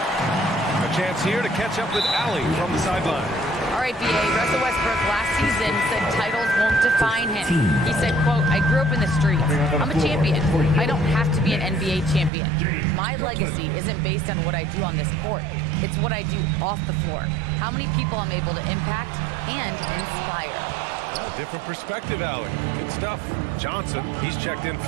A chance here to catch up with Allie from the sideline. All right, B.A. Russell Westbrook last season said titles won't define him. He said, quote, I grew up in the streets. I'm a champion. I don't have to be an NBA champion. My legacy isn't based on what I do on this court. It's what I do off the floor. How many people I'm able to impact and inspire. Well, different perspective, Allie. Good stuff. Johnson, he's checked in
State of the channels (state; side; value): drops out; left; at 12.3 s